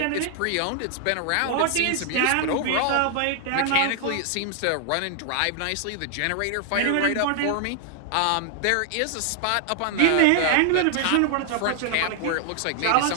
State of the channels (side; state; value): both; different; correlation 0.00